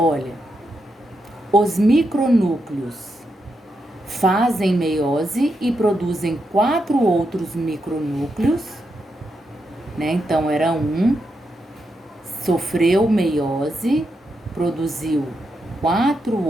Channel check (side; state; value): both; normal; correlation 0.84